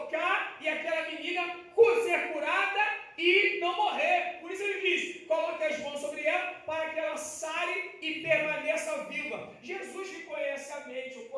e aquela menina ser curada e não morrer. Por isso ele diz: coloque as mãos sobre ela para que ela sare e permaneça viva. Jesus que conhece a mente, o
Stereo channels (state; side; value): identical; both; correlation 1.00